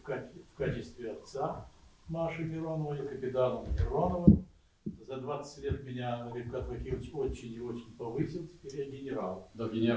качестве отца Маши Мироновой, капитаном Мироновым. За 20 лет меня Рифкат Вакилович очень и очень повысил, теперь я генерал. До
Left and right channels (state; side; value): identical; both; correlation 1.00